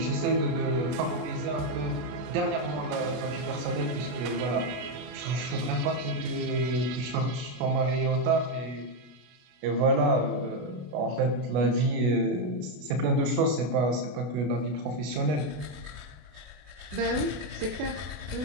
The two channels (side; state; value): left; late; 33 ms